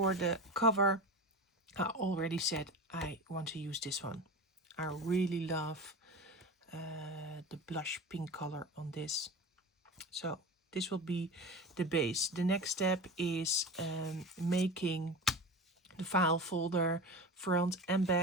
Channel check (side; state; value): both; normal; correlation 0.29